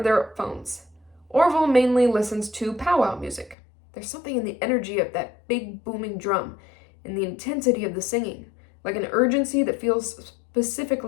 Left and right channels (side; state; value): right; drops out; at 3.6 s